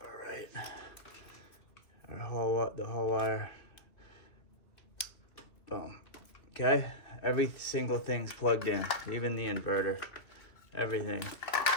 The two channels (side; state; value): right; late; 2.7 ms